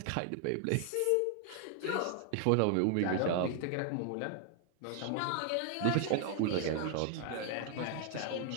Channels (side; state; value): both; different; correlation 0.00